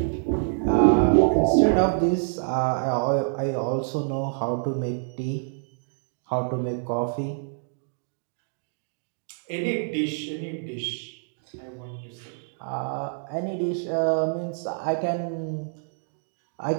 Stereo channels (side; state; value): left; silent; digital silence